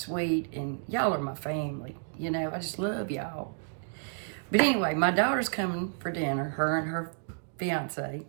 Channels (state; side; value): silent; left; digital silence